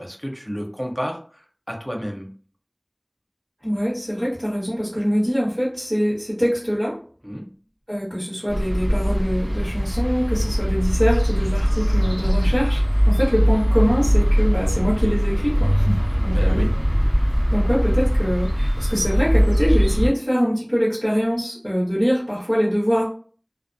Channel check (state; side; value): identical; both; correlation 1.00